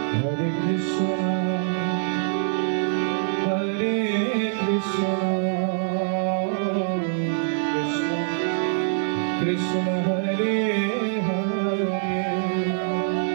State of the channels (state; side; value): silent; left; 62 dB below the other